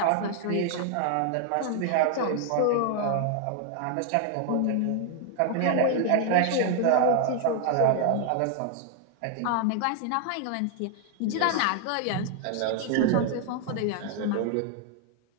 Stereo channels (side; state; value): both; different; correlation 0.00